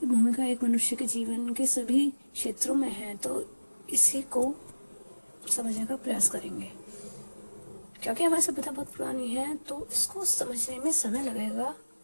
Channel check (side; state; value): both; inverted; correlation -1.00